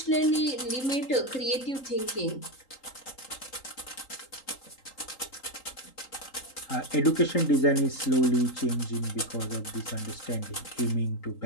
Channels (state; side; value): late; right; 3.8 ms